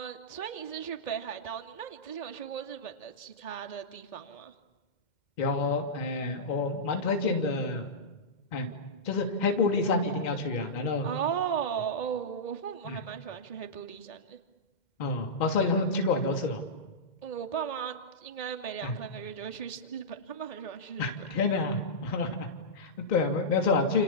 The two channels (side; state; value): right; late; 2.1 ms